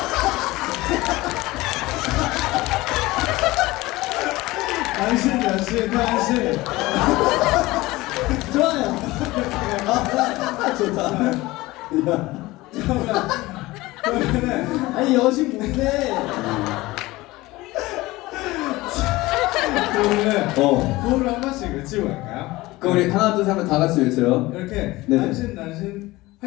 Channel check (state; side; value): quieter; right; 19.6 dB